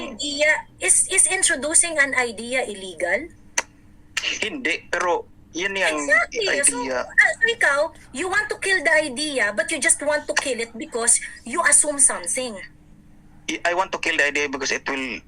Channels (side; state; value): both; identical; correlation 1.00